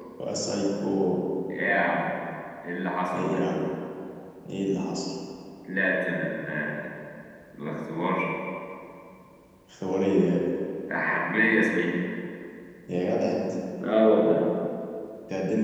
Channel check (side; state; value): both; identical; correlation 1.00